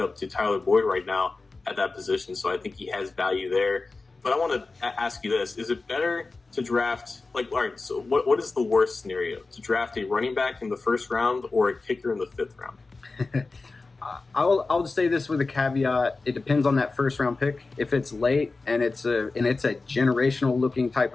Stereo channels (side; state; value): right; quieter; 3.7 dB